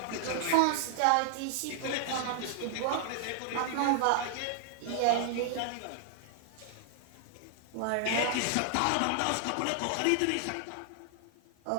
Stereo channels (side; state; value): both; different; correlation 0.00